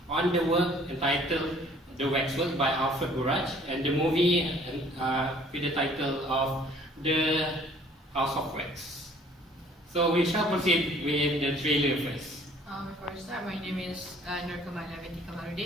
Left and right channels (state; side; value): normal; both; correlation 0.56